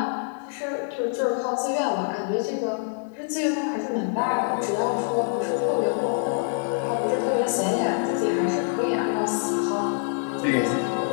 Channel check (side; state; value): right; silent; 61 dB below the other